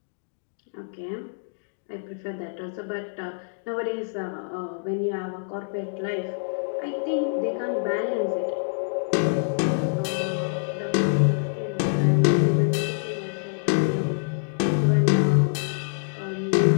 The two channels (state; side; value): silent; right; digital silence